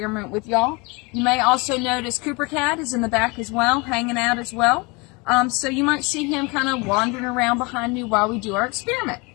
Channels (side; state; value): right; quieter; 28.0 dB